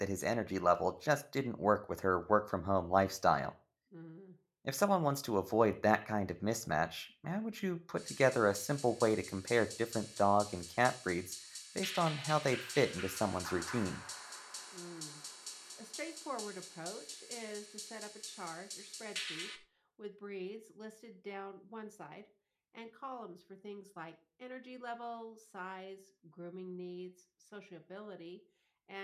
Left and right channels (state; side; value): identical; both; correlation 1.00